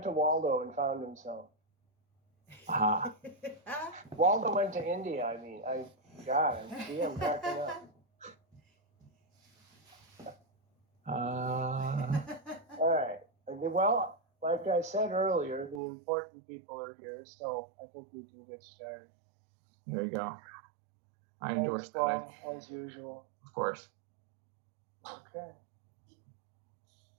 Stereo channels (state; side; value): drops out; left; at 15.8 s